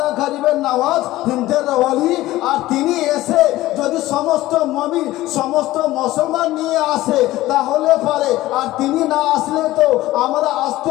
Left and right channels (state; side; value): quieter; right; 16.5 dB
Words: গরিবে নওয়াজ হিন্দের ওলি, আর তিনি এসে যদি সমস্ত মুমিন সমস্ত মুসলমান নিয়ে আসে তাহলে পারে, আর তিনি না আসলে তো আমরা